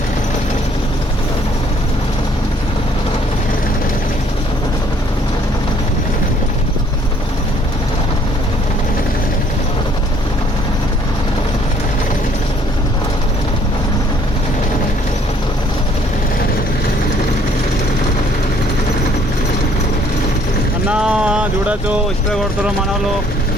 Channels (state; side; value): normal; both; correlation 0.62